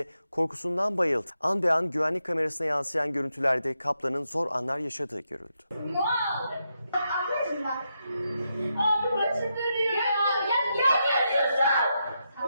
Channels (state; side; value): inverted; both; correlation -0.84